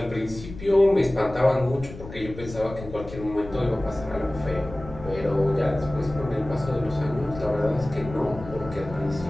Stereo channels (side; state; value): left; noise; rumble, 13 dB below the sound